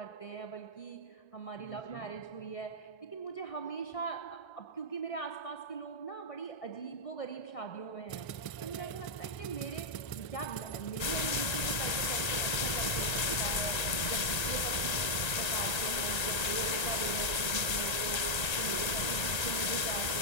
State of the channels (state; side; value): late; right; 1.3 ms